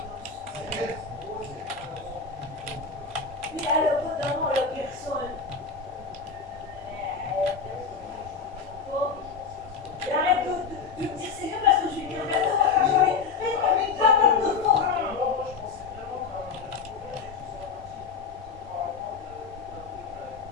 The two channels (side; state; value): right; quieter; 5.5 dB